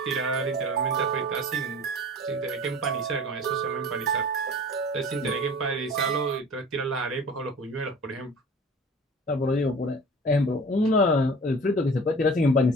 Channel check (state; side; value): normal; both; correlation 0.41